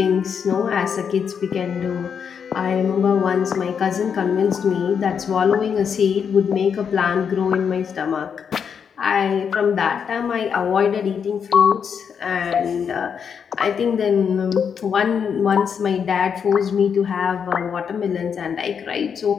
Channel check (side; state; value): right; quieter; 7.0 dB